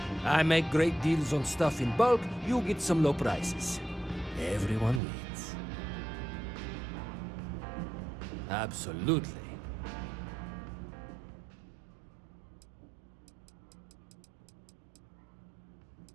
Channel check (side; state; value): left; drops out; at 5.0 s